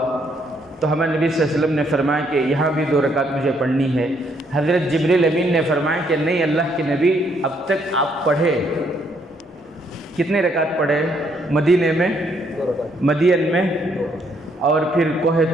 تو ہمارے نبی صلی اللہ علیہ وسلم نے فرمایا کہ یہاں بھی 2 رکعت مجھے پڑھنی ہے۔ حضرت جبریل امین نے فرمایا کہ نہیں، اللہ کے نبی اب تک آپ پڑھے، کتنے رکعت پڑھے؟ مدینے میں، مدین میں، اور پھر کوہ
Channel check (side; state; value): both; normal; correlation 0.71